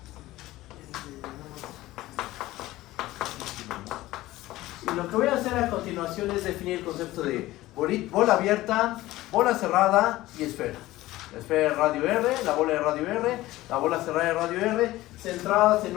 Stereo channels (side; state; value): right; quieter; 17.1 dB